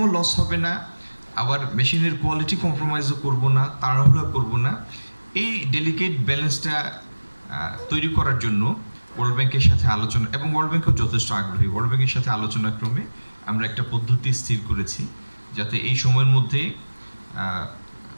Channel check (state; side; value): inverted; both; correlation -1.00